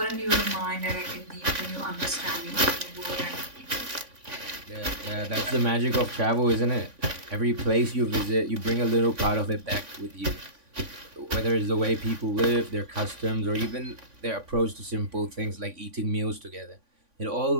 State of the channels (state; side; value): late; left; 3.5 ms